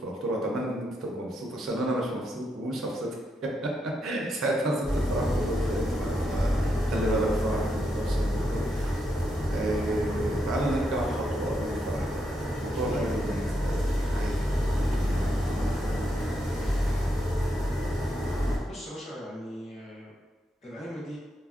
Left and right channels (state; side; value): normal; both; correlation 0.81